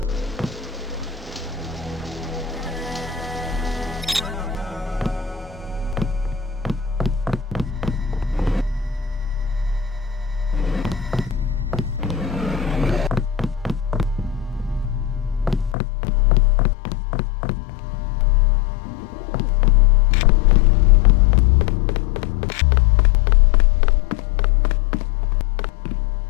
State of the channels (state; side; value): drops out; right; at 15.8 s